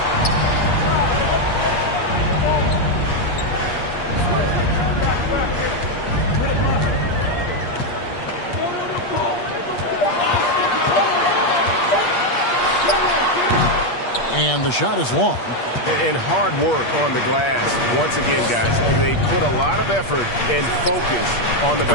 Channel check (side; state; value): right; late; 8.5 ms